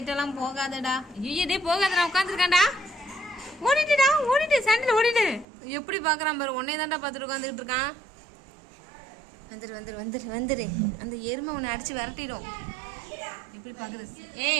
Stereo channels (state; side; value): drops out; left; at 5.5 s